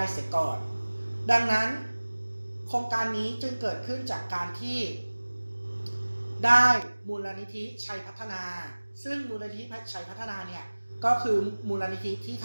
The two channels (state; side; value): inverted; both; correlation -1.00